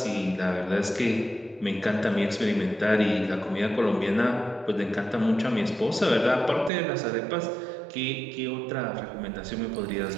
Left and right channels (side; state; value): left; drops out; at 6.7 s